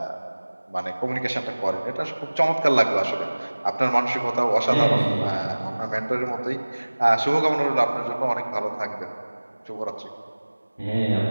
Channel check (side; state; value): both; inverted; correlation -1.00